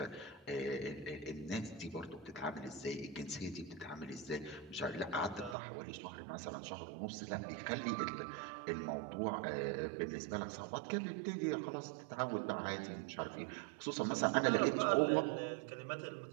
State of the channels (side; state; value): left; drops out; at 5.6 s